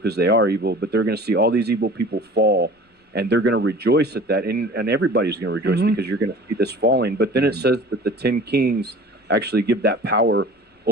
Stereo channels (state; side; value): normal; both; correlation 0.43